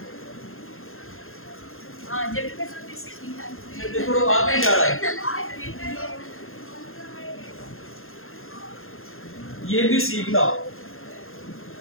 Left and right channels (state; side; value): late; right; 0.61 ms